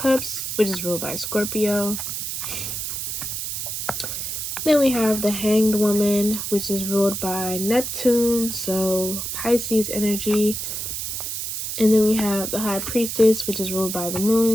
which is ruled by Scorpio. Then we have the Hanged Woman, which is ruled by Neptune, so Pisces energy. And then we have the High Priestess, which is ruled by the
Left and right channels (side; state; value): right; noise; hiss, 4 dB below the sound